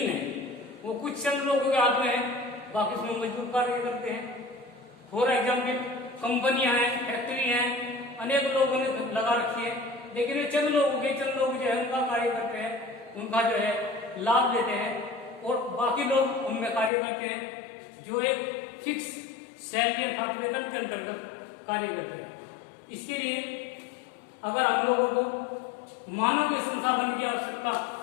है, वो कुछ चंद लोगों के हाथ में है, बाकी उसमें मजदूर कार्य करते हैं। फॉर एग्जाम्पल, कंपनियां हैं, फैक्ट्री हैं, अनेक लोगों ने लगा रखी है, लेकिन ये चंद लोग जो है उनका कार्य करते हैं, उनका जो है लाभ लेते हैं, और बाकी लोग उनमें कार्य करते हैं जो एक फिक्स सैलरी अर्थात वेतन के अंतर्गत कार्य करते हैं। इसके लिए अगर हम लोगों को मानव के संसाधन की आवश्यकता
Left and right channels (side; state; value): right; drops out; at 16.9 s